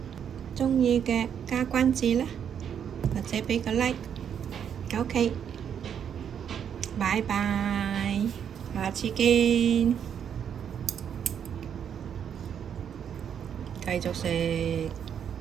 鍾意嘅加關注啦，或者畀個 like。OK，拜拜，下次見。繼續食。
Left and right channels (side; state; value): left; quieter; 8.3 dB